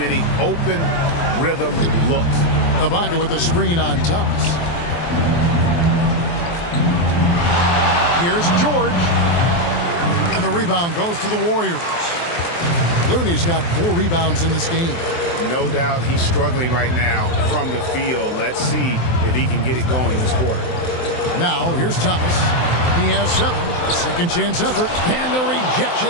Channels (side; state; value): right; late; 23 ms